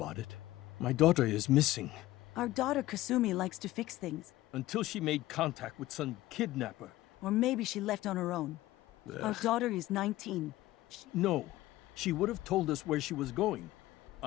it. My daughter is missing. Our daughter Kasumi likes to fix things. Until she made contact with some kidnapper. Or maybe she left on her own. Our daughter is 19. No, she would have told us where she was going.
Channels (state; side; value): quieter; right; 16.5 dB